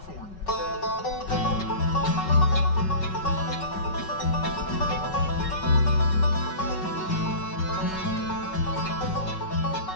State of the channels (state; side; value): late; right; 5.3 ms